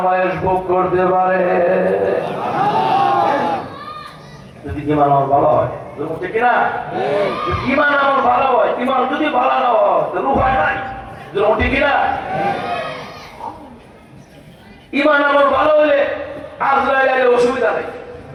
ভোগ করতে পারে। যদি ঈমান আমার ভালো হয়, ঠিক না? ঈমান আমার ভালো হয়, ঈমান যদি ভালো না হয় তো রূহ হয় নাই, ঠিক না? ঈমান আমার ভালো হলে আজরাইলের অসুবিধা নাই,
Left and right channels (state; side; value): identical; both; correlation 1.00